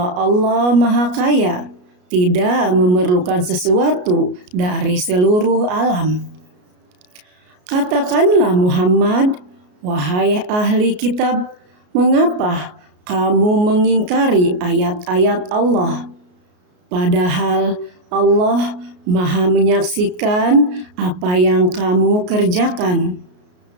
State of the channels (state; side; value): late; left; 33 ms